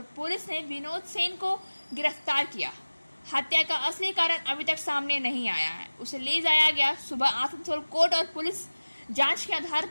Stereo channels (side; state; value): both; inverted; correlation -1.00